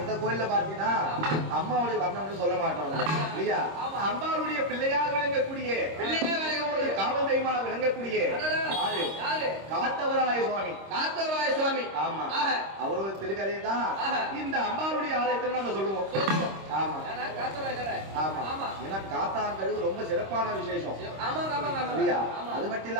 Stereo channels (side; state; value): left; late; 26 ms